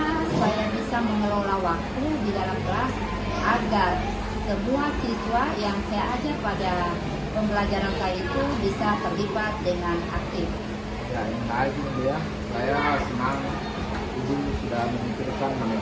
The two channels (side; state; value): both; identical; correlation 1.00